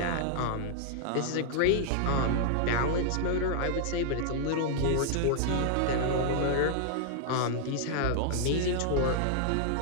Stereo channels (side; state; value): both; different; correlation -0.01